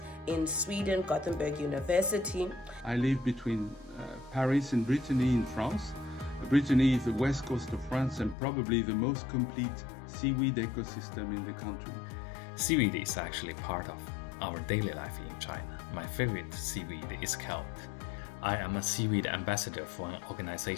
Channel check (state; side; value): drops out; right; at 8.3 s